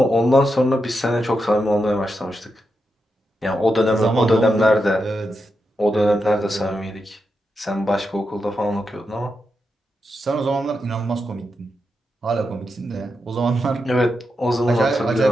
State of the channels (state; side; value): normal; both; correlation 0.86